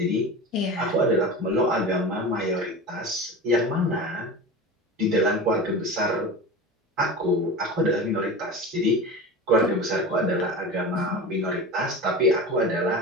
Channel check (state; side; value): normal; both; correlation 0.30